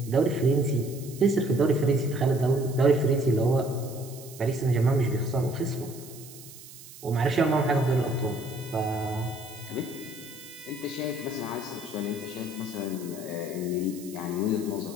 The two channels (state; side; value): noise; right; hiss, 17 dB below the sound